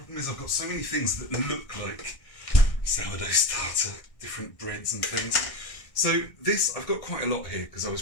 is I've got so many things that look like sourdough starter, different breads and things. So this, I've got quite a lot here because I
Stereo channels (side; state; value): right; late; 1.6 ms